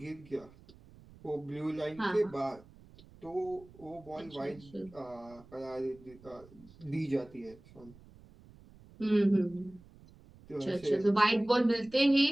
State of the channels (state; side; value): noise; right; rumble, 23 dB below the sound